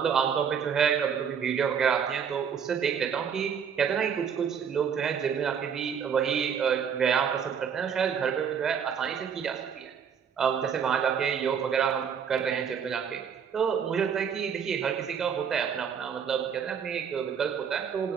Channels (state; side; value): quieter; left; 7.4 dB